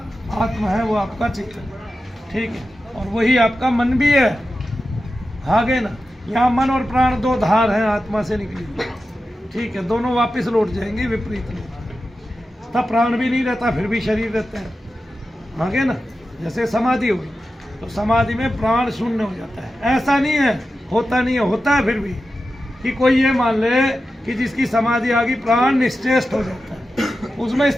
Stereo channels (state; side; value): normal; both; correlation 0.92